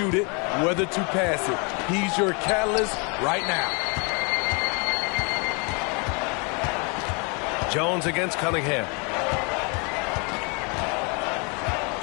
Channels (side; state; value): right; quieter; 33.3 dB